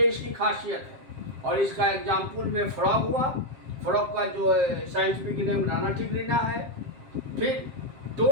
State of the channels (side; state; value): left; late; 7.5 ms